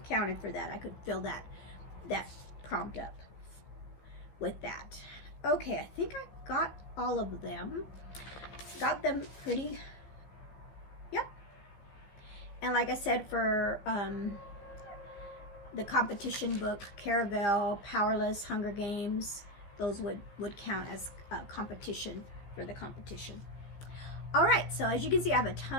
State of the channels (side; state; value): right; late; 15 ms